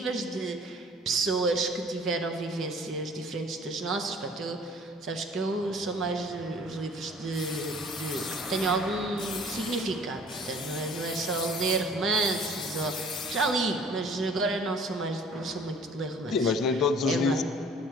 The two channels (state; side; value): normal; both; correlation 0.51